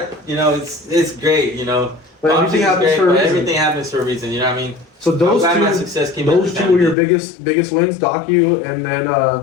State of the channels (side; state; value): right; drops out; at 7.0 s